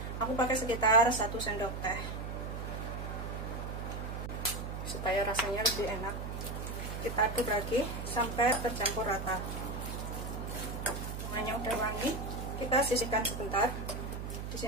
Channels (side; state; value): right; noise; hum, 6 dB below the sound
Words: Aku pakai sekitar 1 sendok teh supaya rasanya lebih enak. Kita aduk lagi sampai tercampur rata. Semuanya udah wangi, kita sisihkan sebentar. Di